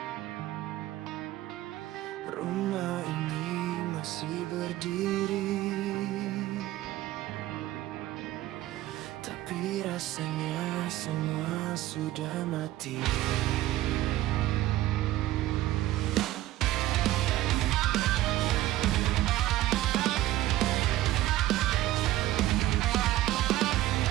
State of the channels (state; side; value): quieter; left; 15.3 dB